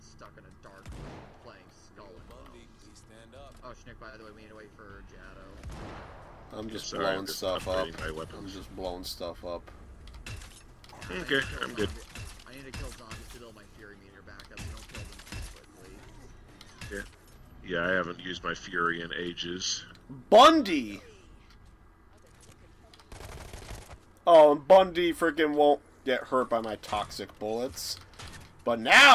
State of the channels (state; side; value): identical; both; correlation 1.00